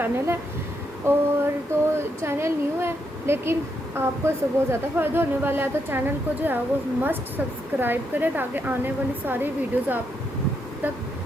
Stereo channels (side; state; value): both; normal; correlation 0.79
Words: है। और तो चैनल न्यू है लेकिन आपको इससे बहुत ज़्यादा फ़ायदा होने वाला है, तो चैनल को जो है वो मस्ट सब्सक्राइब करें ताकि आने वाली सारी वीडियोज़ आप तक